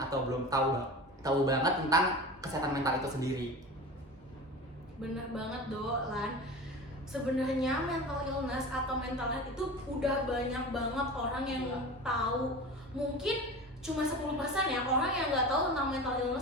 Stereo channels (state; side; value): normal; both; correlation 0.33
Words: belum tahu banget tentang kesehatan mental itu sendiri. Bener banget Lan. Sebenarnya mental illness atau mental health itu udah banyak banget orang yang tahu. Mungkin cuma 10% ya orang yang nggak tahu tentang mental